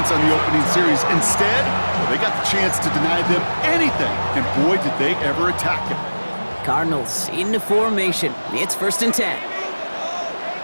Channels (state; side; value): inverted; both; correlation -1.00